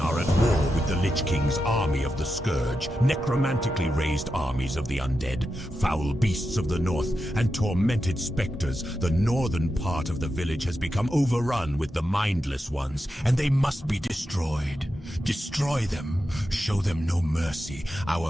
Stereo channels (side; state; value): both; normal; correlation 0.89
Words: at war with the Lich King's army of the Scourge, necromantically raised armies of the undead, foul beasts of the north, and tormented specters. The northern part of the village has become overrun with the mindless ones, and they must be destroyed. Destroy them. Show them no mercy,